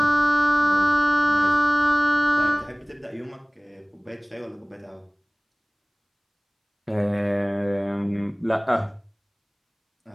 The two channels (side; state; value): both; identical; correlation 1.00